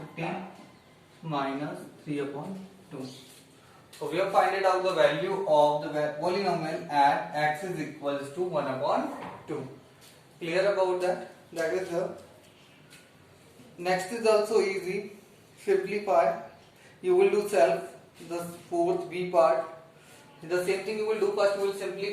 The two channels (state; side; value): identical; both; correlation 1.00